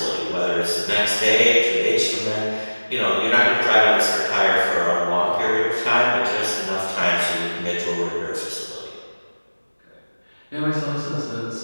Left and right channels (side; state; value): both; inverted; correlation -1.00